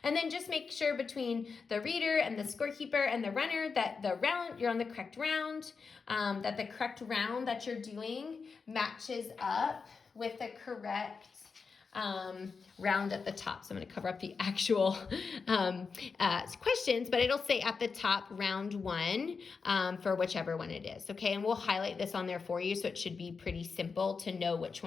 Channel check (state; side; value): quieter; right; 5.1 dB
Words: And then just make sure between the reader and the scorekeeper and the runner that the round, you're on the correct round, that the correct round that you're doing matches up with the correct round at the top. So I'm going to cover up the actual questions, but it'll say at the top round 1 for whichever one it is. Okay, and we'll highlight this on there for you, so it should be pretty simple to know which